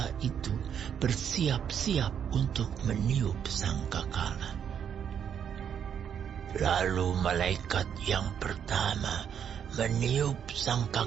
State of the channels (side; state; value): left; quieter; 8.3 dB